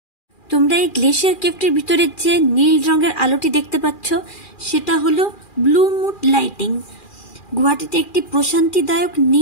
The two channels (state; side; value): late; right; 2.4 ms